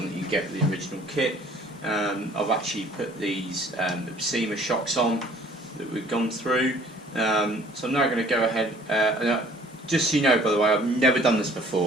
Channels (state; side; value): normal; both; correlation 0.55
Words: that you get with the original kit. I've actually put these Tamiya shocks on that we've gone through. So I'm now going to go ahead, just so you know, by the way, I've never done this